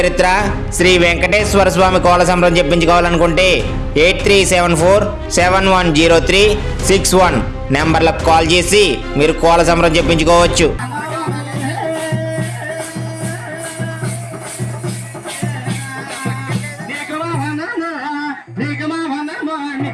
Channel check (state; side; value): identical; both; correlation 1.00